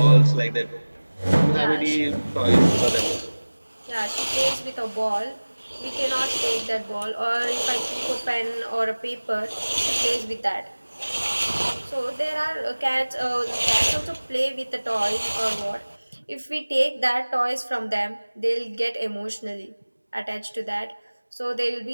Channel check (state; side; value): inverted; both; correlation -1.00